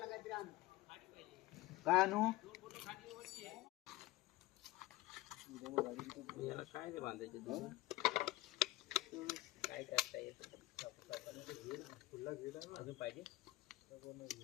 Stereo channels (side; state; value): right; quieter; 18.2 dB